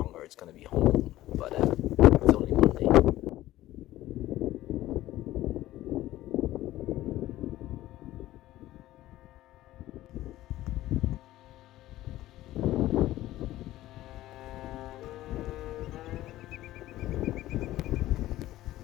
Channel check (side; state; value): right; quieter; 15.3 dB